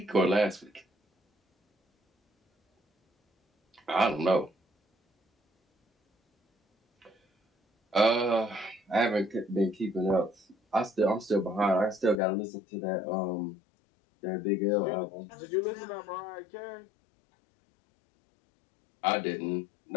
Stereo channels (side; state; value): right; drops out; at 12.2 s